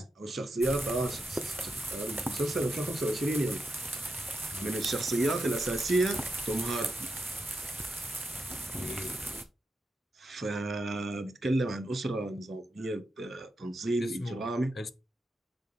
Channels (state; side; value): normal; both; correlation 0.86